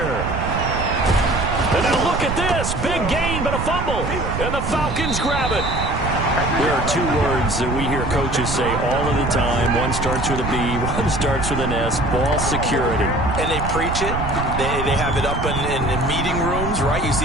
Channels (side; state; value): right; noise; rumble, 4 dB below the sound